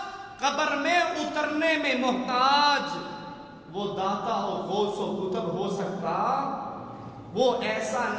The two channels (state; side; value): identical; both; correlation 1.00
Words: قبر میں اترنے میں محتاج، وہ داتا اور غوث و کتب ہو سکتا، وہ ایسا